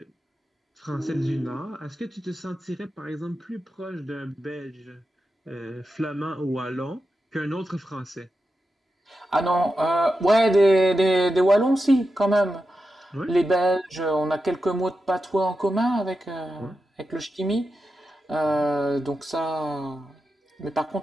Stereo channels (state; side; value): normal; both; correlation 0.89